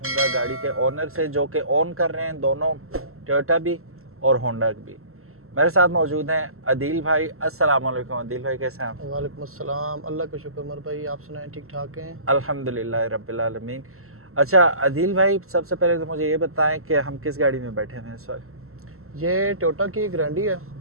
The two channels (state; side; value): late; left; 0.63 ms